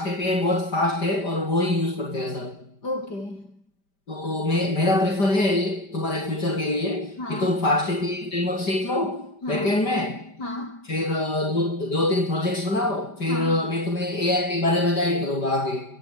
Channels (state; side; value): late; right; 5.1 ms